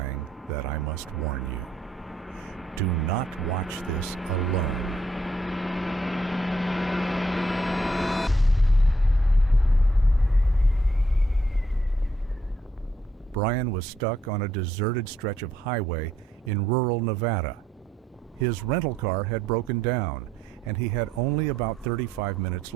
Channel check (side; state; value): both; normal; correlation 0.72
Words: that I must warn you. Do not watch this alone. Brian was stuck on a deserted stretch of highway in rural Nevada. His rental car had broken down, and he had only about 35 minutes